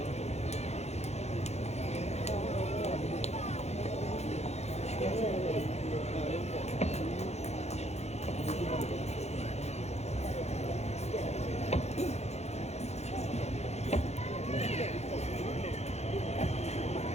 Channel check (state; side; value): late; right; 0.31 ms